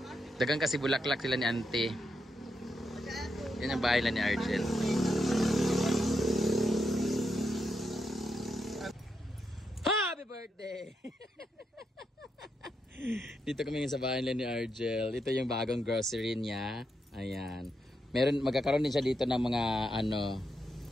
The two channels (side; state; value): both; normal; correlation 0.83